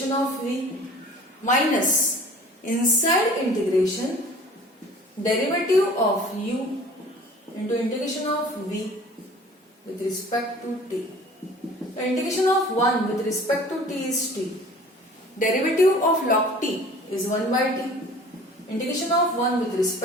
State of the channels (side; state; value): both; normal; correlation 0.46